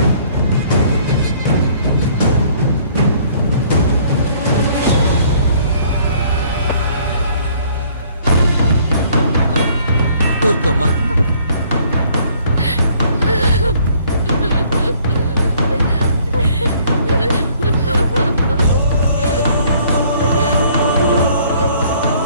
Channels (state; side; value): inverted; both; correlation -0.60